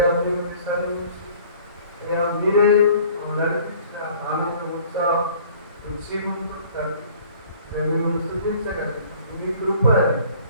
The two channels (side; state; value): both; inverted; correlation -0.52